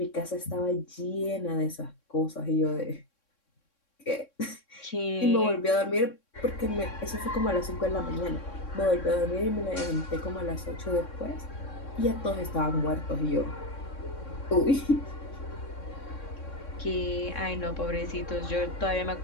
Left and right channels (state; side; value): late; right; 3.6 ms